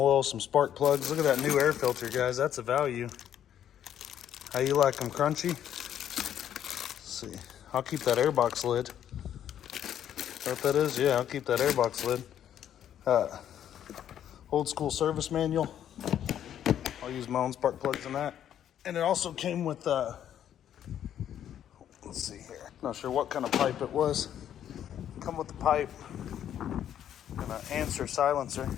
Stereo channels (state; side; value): quieter; right; 10.2 dB